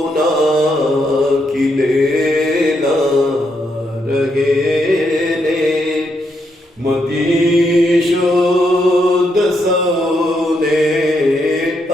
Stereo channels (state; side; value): normal; both; correlation 0.79